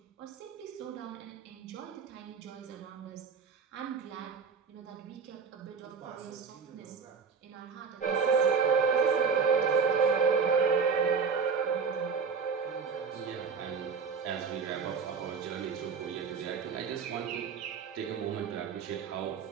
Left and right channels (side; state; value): left; quieter; 5.8 dB